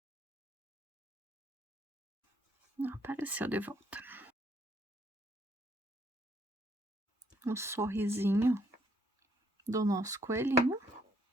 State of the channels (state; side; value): normal; both; correlation 0.69